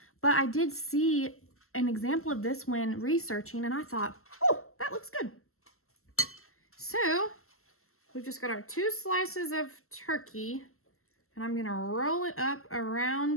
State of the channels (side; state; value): right; late; 0.63 ms